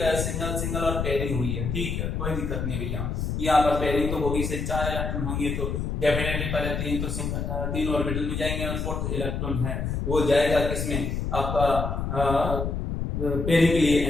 है, सिंगल और पेयरिंग हुई है, ठीक है कोई दिक्कत नहीं भैया, यहाँ पर पेयरिंग तो होगी, से 4 इलेक्ट्रॉन होंगे तो डेफिनेटली पहले 3 तो 3 ऑर्बिटल में जाएंगे और 4th इलेक्ट्रॉन है वो जाएगा किसमें, आपका पेयरिंग के लिए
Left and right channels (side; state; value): left; noise; rumble, 2 dB below the sound